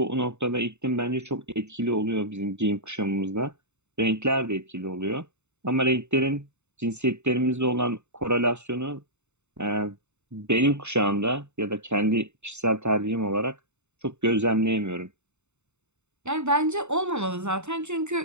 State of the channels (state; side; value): late; left; 0.82 ms